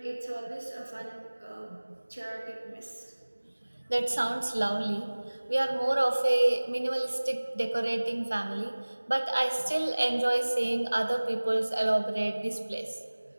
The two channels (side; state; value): both; inverted; correlation -1.00